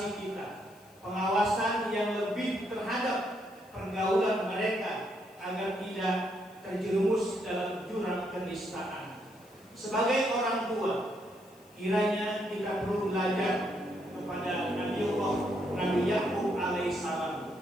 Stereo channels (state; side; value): noise; left; hiss, 28 dB below the sound